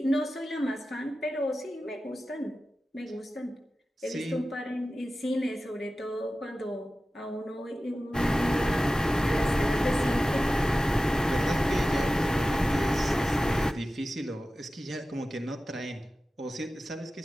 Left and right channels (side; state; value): both; normal; correlation 0.95